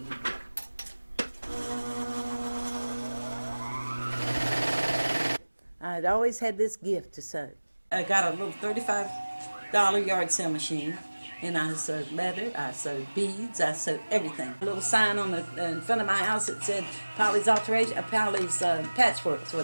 I'd always had this gift to sew. I got a little $35 yard sale machine, and I sewed leather, I sewed beads, I sewed everything. A little sign in front of my house that said Polly's Patchwork is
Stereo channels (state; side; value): inverted; both; correlation -1.00